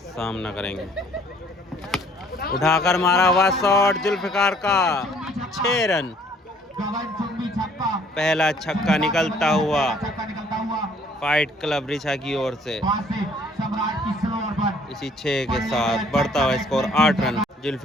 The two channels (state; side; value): normal; both; correlation 0.59